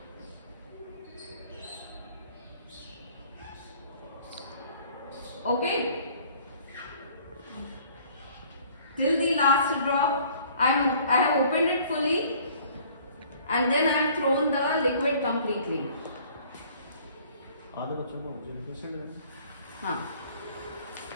Okay, till the last drop. I have opened it fully and then I have thrown the liquid completely. आधे बच्चों को हाँ,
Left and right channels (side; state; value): both; inverted; correlation -0.55